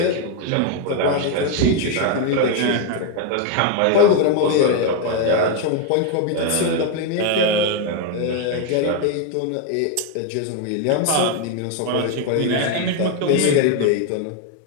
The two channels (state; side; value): different; both; correlation 0.01